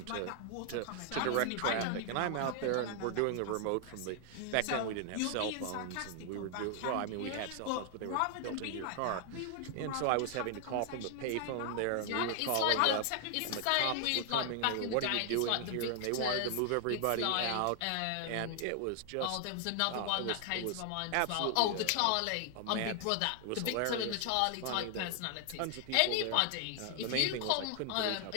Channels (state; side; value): different; both; correlation 0.00